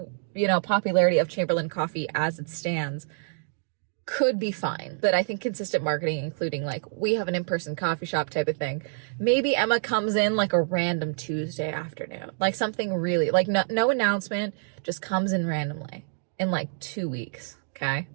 you know, popularity of Chamberlain Coffee as it stands, could be fine. But I think consistent marketing, including like, we have an in-person coffee shop type of thing. Maybe Emma comes in like a random Tuesday afternoon. Like something really, like no announcement, just comes in randomly. In like 2 weeks, okay?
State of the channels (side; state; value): left; silent; digital silence